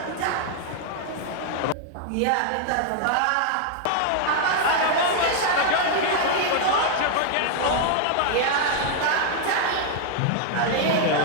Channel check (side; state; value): both; different; correlation 0.00